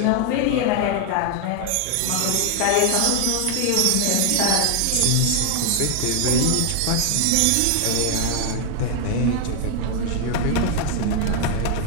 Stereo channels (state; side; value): different; both; correlation 0.00